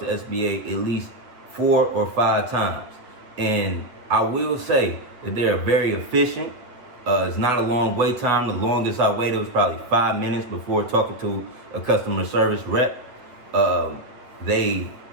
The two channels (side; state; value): left; late; 8.3 ms